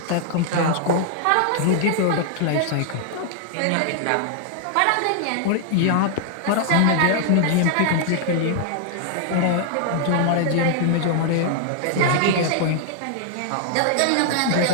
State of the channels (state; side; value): different; both; correlation 0.00